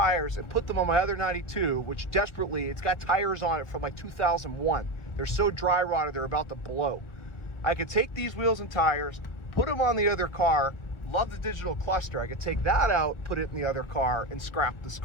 and put them on my other 92, which desperately, it's got tires on it from like 2001. They're so dry rotted, they're about to blow. I could take these wheels and tires, put them on the other car. Love the digital cluster. I could take that out, put it in the other car, and scrap this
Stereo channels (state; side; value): late; right; 1.4 ms